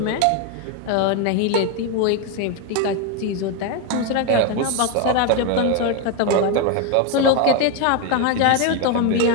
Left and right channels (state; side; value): different; both; correlation 0.02